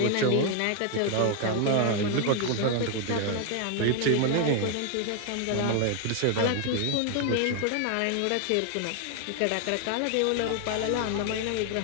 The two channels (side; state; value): both; different; correlation 0.00